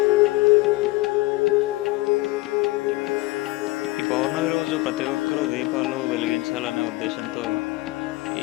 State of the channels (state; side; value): quieter; right; 21.0 dB